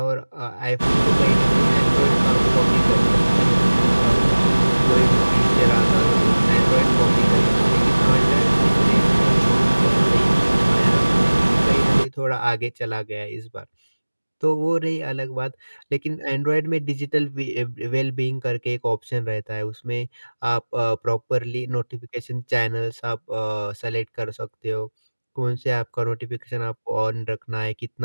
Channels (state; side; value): inverted; both; correlation -1.00